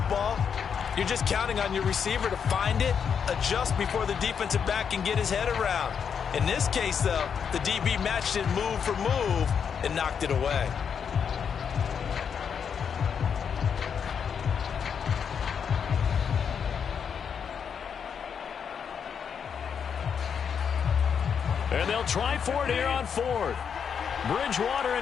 ball, you're just counting on your receiver to find it, adjust before the defensive back can get his head around. In this case, though, the DB matched it move for move and knocked it away. And they'll try for it here on 4th. Bridgewater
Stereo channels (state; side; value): quieter; right; 7.1 dB